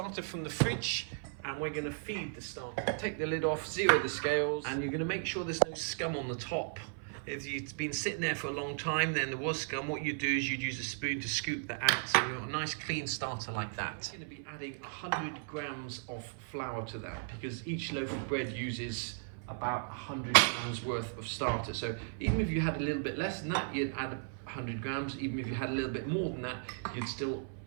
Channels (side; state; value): left; silent; 54 dB below the other